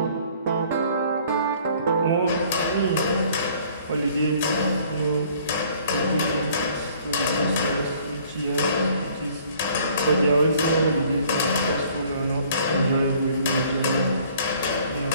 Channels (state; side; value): inverted; both; correlation -0.57